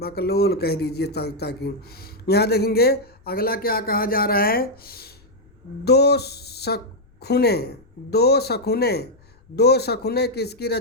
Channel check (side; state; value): left; noise; rumble, 30 dB below the sound